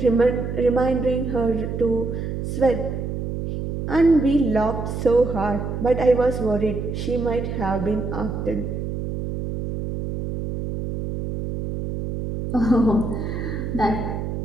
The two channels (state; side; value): noise; right; hum, 4 dB below the sound